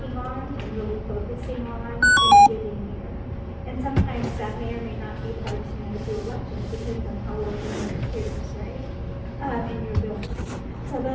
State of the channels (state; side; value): identical; both; correlation 1.00